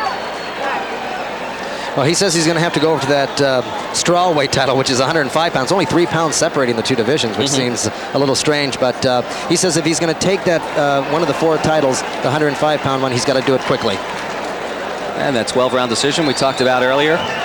Well, he says he's going to have to go over to that strawweight title, which is 105 pounds. Only 3 pounds separating the 2 divisions, which seems a little strange. But he says if he's going to take that one of the 4 titles, the 105-pound one, he's got to do it quickly. And that 12-round decision we talked about earlier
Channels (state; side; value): identical; both; correlation 1.00